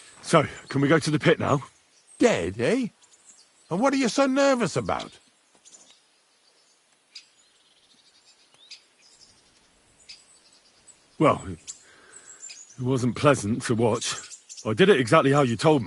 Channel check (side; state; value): both; identical; correlation 1.00